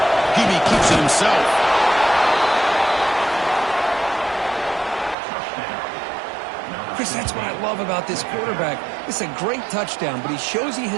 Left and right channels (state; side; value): drops out; left; at 5.2 s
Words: Peavy keeps it himself. Chris, that's what I love about this quarterback. It's a great touchdown, but he shows you